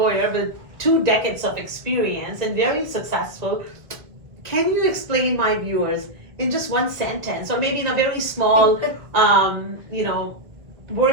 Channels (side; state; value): left; late; 1.4 ms